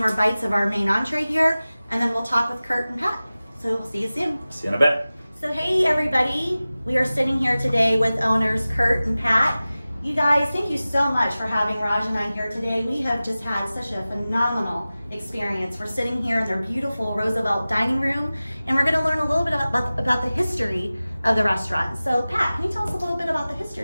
bites of our main entree here, and then we'll talk with Kurt and Pat. So we'll see you soon. See you in a bit. So hey everybody, we are sitting here today with owners Kurt and Pat. You guys, thank you so much for having Raj and I here today. We have just had such a phenomenal experience. We're sitting here in their beautiful Roosevelt dining room, and we're gonna learn a little bit about the history of the restaurant. So Pat, can you tell us a little bit about the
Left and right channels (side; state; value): both; inverted; correlation -0.97